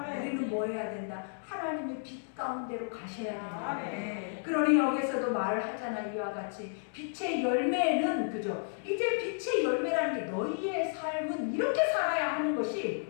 우리는 뭐 해야 된다? 하나님의 빛 가운데로 가셔야 된다. 그러니 여기서도 말을 하잖아. 이와 같이 빛의 열매는, 그죠? 이제 빛의 열매라는 게 너희의 삶은 이렇게 살아야 하는 것이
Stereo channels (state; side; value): silent; right; digital silence